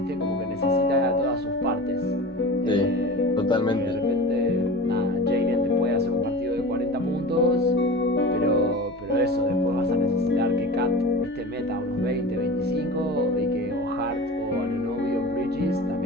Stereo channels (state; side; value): normal; both; correlation 0.34